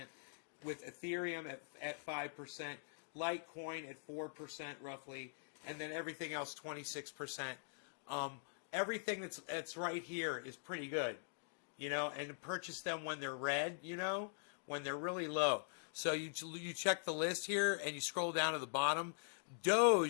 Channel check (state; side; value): silent; right; digital silence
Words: with Ethereum at 5%, Litecoin at 4% roughly, and then everything else 26%. Everything that's right here is pretty good, you know, and purchase them when they're red, you know, when they're really low. So you check the list here and you scroll down to the bottom.